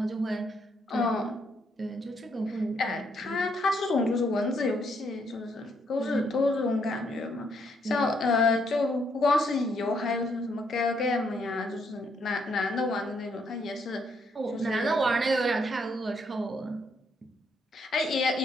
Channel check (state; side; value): normal; both; correlation 0.73